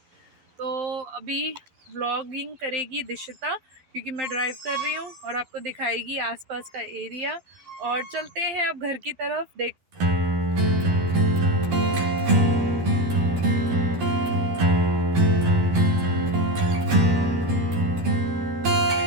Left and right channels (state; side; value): late; left; 12 ms